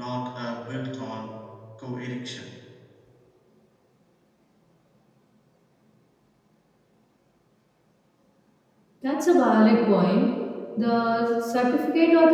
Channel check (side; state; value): both; identical; correlation 1.00